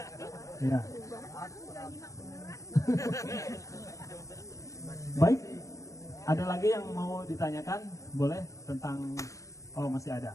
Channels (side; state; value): right; late; 0.15 ms